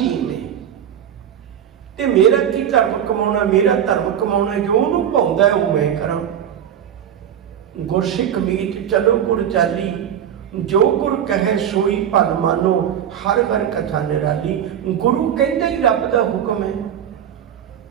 में। ते मेरा की धर्म कमाना, मेरा धर्म कमाना, जो उन्होंने भाउंदा है वो मैं करा। गुरसिख मीत चलो गुर चाली, जो गुर कहे सोई भल मानो, हर हर कथा निराली। गुरु कहता ही रब का हुक्म है,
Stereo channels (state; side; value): quieter; left; 9.5 dB